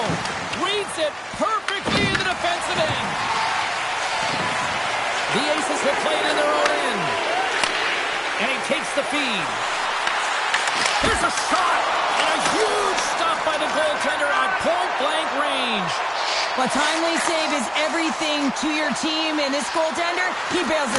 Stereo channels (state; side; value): identical; both; correlation 1.00